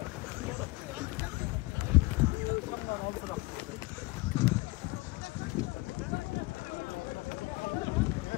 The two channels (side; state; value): right; quieter; 22.0 dB